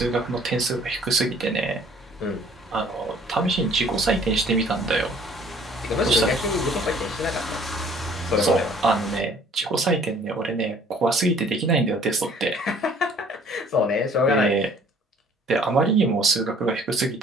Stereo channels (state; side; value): normal; both; correlation 0.56